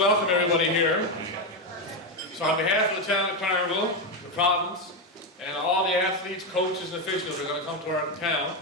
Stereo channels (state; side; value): normal; both; correlation 0.08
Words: to welcome everybody here. So on behalf of the town of Clarenville, the province, and all the athletes, coaches, and officials who are going to come to our town,